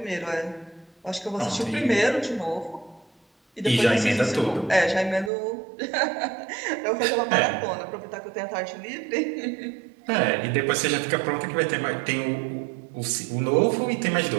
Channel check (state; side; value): drops out; left; at 5.3 s